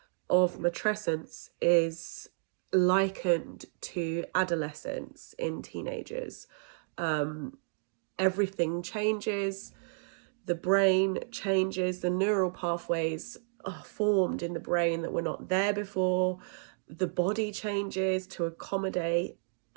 of matrescence is likened to adolescence in teenagers. Everything changes, the brain changes, the neural pathways are formed in the brain that were not there before, the body changes to accommodate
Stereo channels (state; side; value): silent; left; digital silence